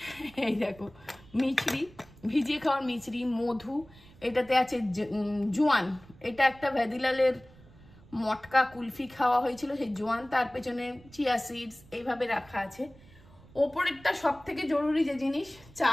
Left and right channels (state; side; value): noise; right; rumble, 24 dB below the sound